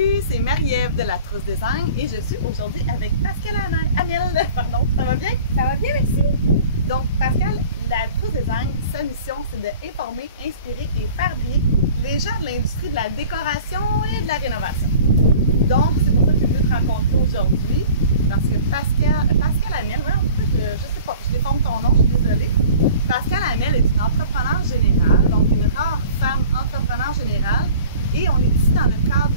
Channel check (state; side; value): inverted; both; correlation -0.45